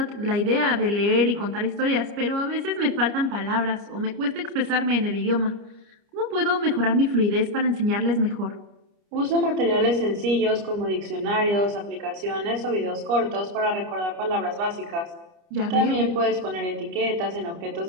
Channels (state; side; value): late; left; 29 ms